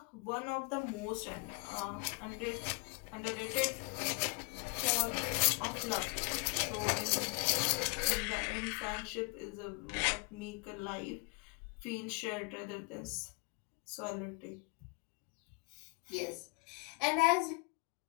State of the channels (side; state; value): right; quieter; 34.5 dB